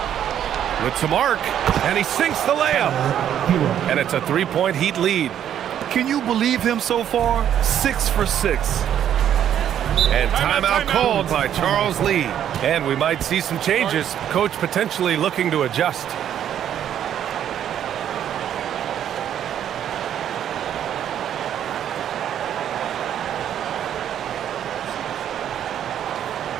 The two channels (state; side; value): quieter; left; 10.1 dB